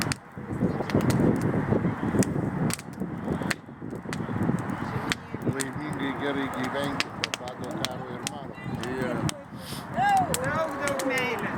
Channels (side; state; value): both; identical; correlation 1.00